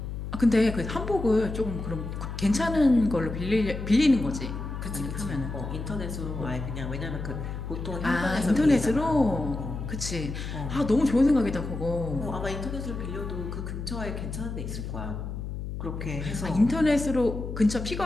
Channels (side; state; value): left; noise; hum, 6 dB below the sound